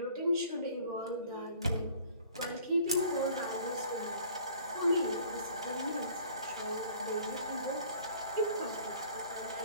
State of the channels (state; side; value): inverted; both; correlation -0.52